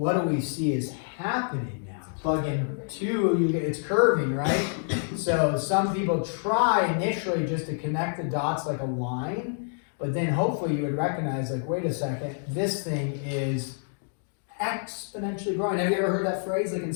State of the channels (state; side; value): silent; right; 60 dB below the other